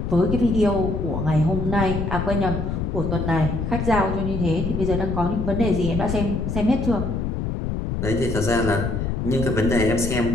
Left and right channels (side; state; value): left; noise; rumble, 2 dB below the sound